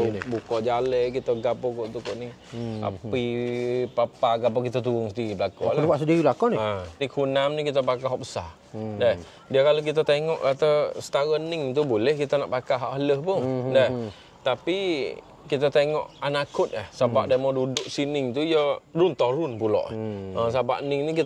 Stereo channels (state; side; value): identical; both; correlation 1.00